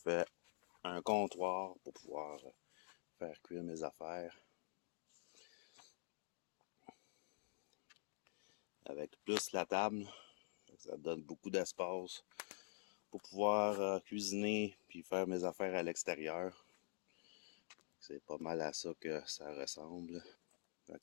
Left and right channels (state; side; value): silent; right; digital silence